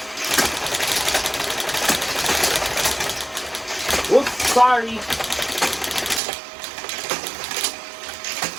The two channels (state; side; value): drops out; left; at 6.2 s